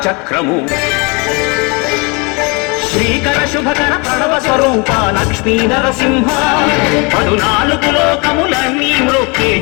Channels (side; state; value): right; quieter; 29.7 dB